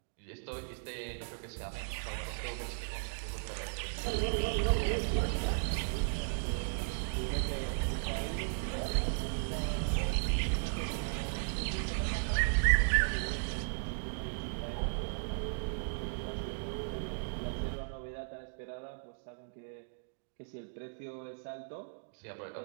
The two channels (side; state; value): left; silent; digital silence